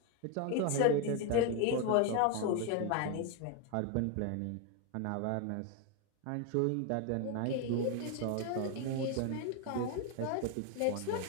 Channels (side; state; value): both; different; correlation 0.01